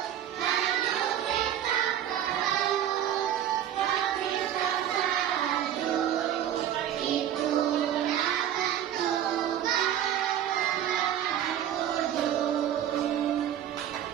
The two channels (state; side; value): quieter; left; 10.6 dB